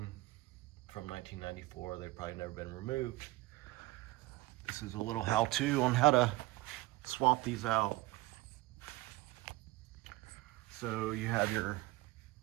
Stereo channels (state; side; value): quieter; left; 19.7 dB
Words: from 1994. They've probably never been removed. This is a little how-to on how to swap these out. So you have your